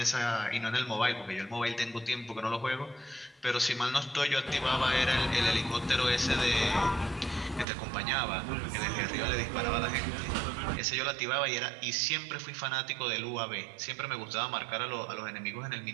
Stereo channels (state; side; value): drops out; left; at 7.7 s